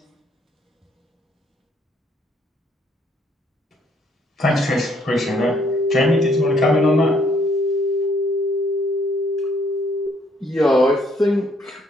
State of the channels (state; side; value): normal; both; correlation 0.67